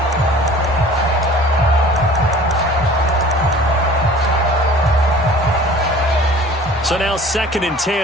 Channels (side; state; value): both; normal; correlation 0.47